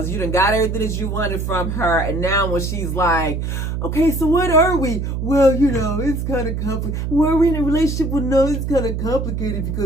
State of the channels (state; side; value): noise; right; hum, 3 dB below the sound